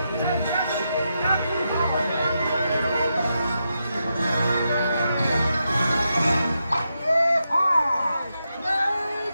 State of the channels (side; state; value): both; inverted; correlation -0.85